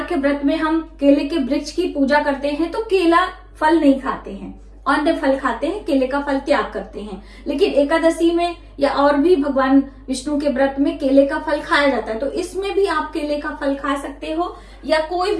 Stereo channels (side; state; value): both; identical; correlation 1.00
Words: के व्रत में हम केले के वृक्ष की पूजा करते हैं, तो केला फल नहीं खाते हैं, अन्य फल खाते हैं, केले का फल त्याग करते हैं। लेकिन एकादशी में या और भी भगवान विष्णु के व्रत में केले का फल खाया जाता है, तो इसमें भी आप केले का फल खा सकते हो, या कोई